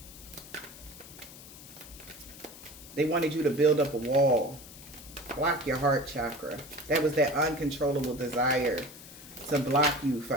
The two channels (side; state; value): left; noise; hiss, 17 dB below the sound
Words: They wanted you to build up a wall. Block your heart chakra. That was that uncontrollable desire to block you